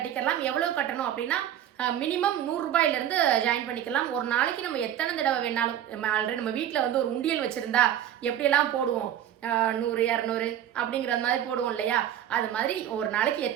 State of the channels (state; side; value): quieter; left; 10.8 dB